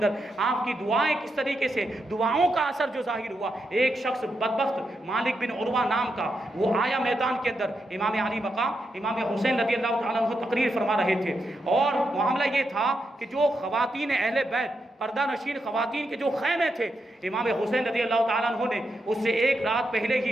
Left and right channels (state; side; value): normal; both; correlation 0.84